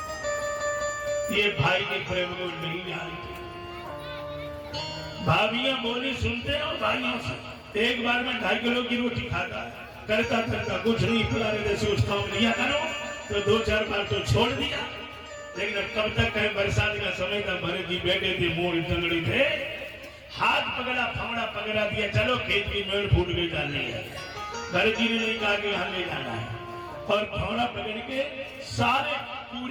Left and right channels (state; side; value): identical; both; correlation 1.00